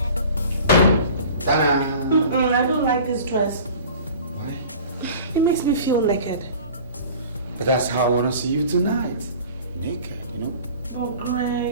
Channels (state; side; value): inverted; both; correlation -0.42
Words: I don't like this dress. Why? It makes me feel naked. But that's how I want to see you tonight. Naked, you know? Oh,